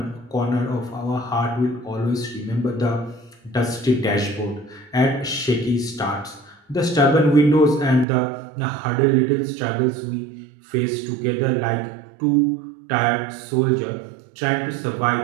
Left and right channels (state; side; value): drops out; left; at 8.1 s